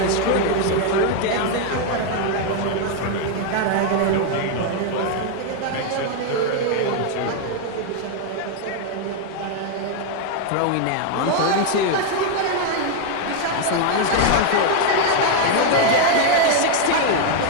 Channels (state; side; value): different; both; correlation 0.00